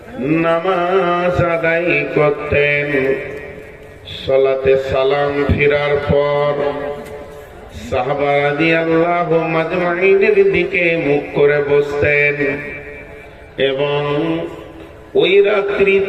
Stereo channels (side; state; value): both; identical; correlation 1.00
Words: নামাজ আদায় করতেন। সালাতে সালাম ফিরার পর সাহাবা রাদিয়াল্লাহু মাজমাইনের দিকে মুখ করে বসতেন এবং ওই